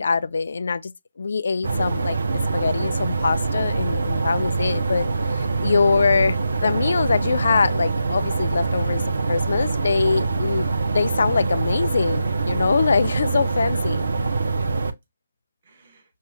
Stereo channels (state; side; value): inverted; both; correlation -0.86